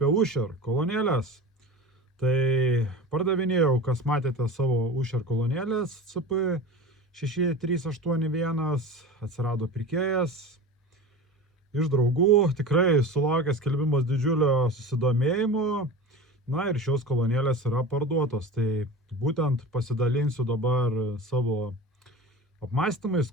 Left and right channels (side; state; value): both; normal; correlation 0.32